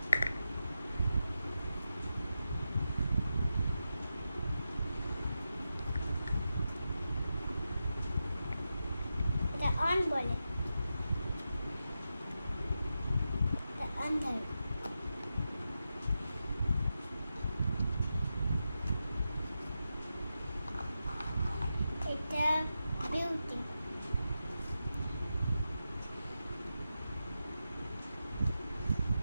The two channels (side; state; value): both; inverted; correlation -0.90